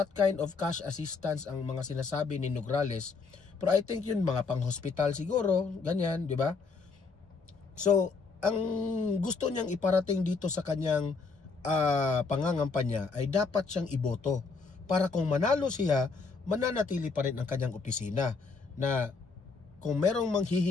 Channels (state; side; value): quieter; right; 4.6 dB